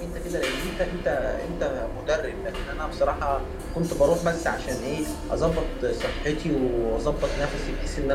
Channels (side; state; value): both; identical; correlation 1.00